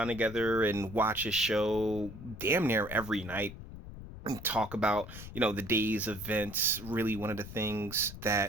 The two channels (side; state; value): left; noise; rumble, 13 dB below the sound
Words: together and watch his show damn near every night and talk about the day's events. Really one of the things